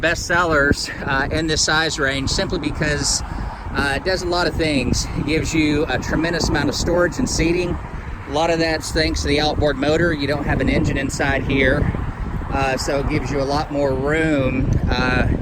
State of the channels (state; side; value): identical; both; correlation 1.00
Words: sellers in this size range, simply because it does a lot of things. It gives you a tremendous amount of storage and seating. A lot of that's thanks to the outboard motor. You don't have an engine inside here, so it gives you a lot more room